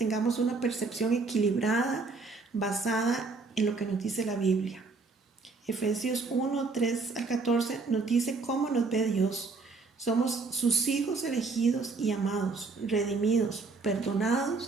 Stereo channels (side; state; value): left; quieter; 4.1 dB